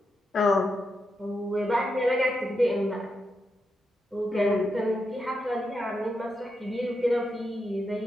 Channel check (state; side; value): normal; both; correlation 0.84